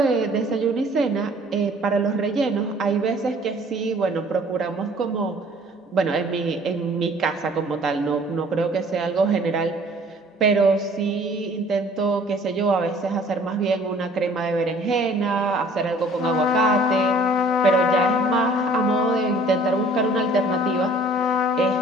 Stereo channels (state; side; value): normal; both; correlation 0.53